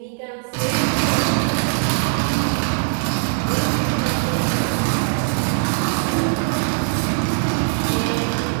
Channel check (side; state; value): left; silent; digital silence